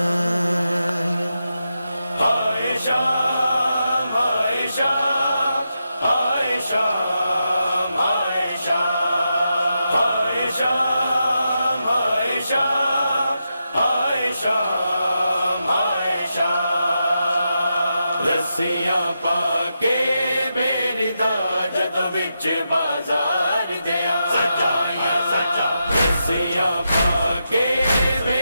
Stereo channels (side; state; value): both; inverted; correlation -0.86